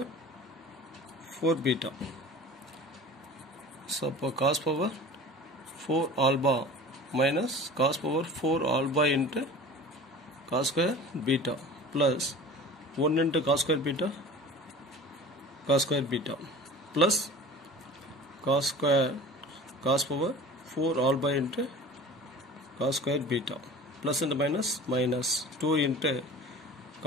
4 beta. So for cos power 4 alpha minus cos power 4 alpha into cos square beta plus 1 into cos square beta plus cos power 4 alpha into cos square beta plus and minus minus 2 into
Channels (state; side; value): normal; both; correlation 0.40